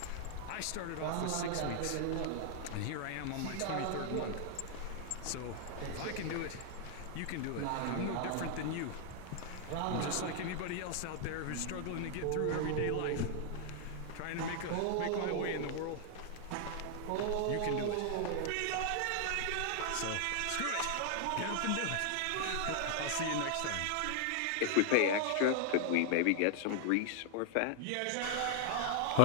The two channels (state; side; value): different; both; correlation 0.00